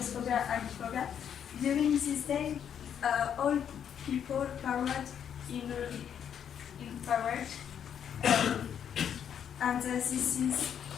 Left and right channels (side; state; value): right; quieter; 8.6 dB